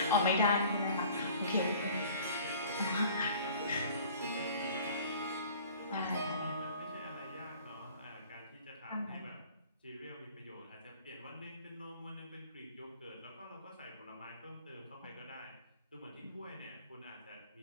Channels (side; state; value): both; inverted; correlation -0.48